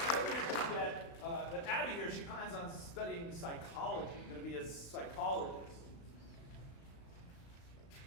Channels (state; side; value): late; right; 36 ms